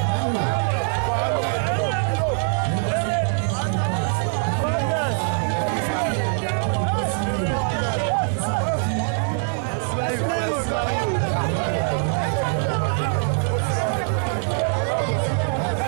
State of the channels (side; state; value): left; silent; digital silence